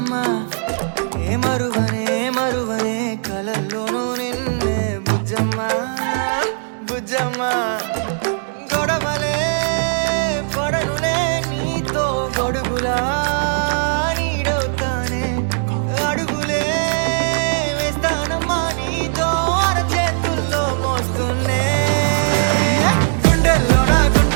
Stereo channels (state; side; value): silent; left; digital silence